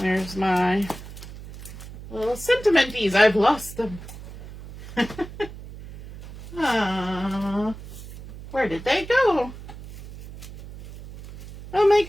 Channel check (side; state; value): right; noise; hum, 14 dB below the sound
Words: my little sentimenties? I've lost them. Where did they go? Oh my